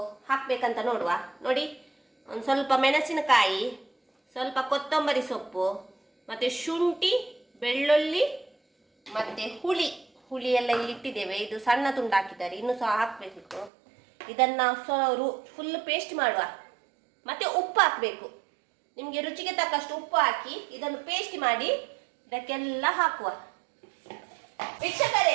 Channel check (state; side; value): drops out; left; at 13.7 s